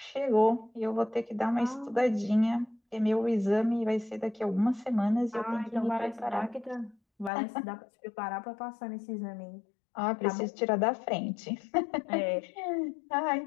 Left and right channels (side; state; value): right; drops out; at 7.3 s